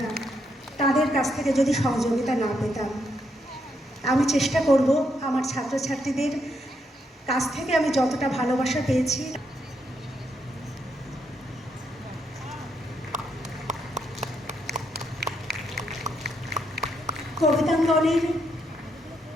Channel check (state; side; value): normal; both; correlation 0.78